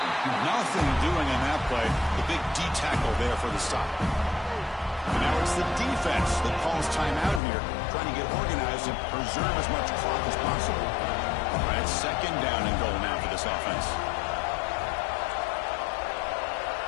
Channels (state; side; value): drops out; right; at 7.4 s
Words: Nothing doing on that play. The big D tackle there for the stop. And now it's the defense that calls timeout here, trying to get organized and preserve as much clock as possible. All right, it's 2nd down and goal now for this offense.